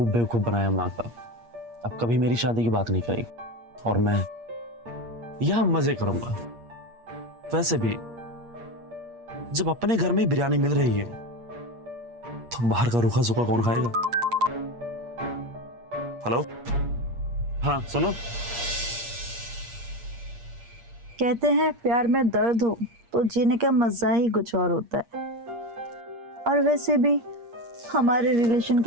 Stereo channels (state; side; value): late; left; 8.5 ms